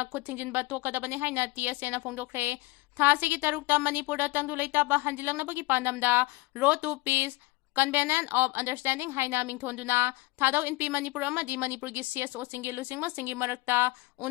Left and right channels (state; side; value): quieter; right; 21.8 dB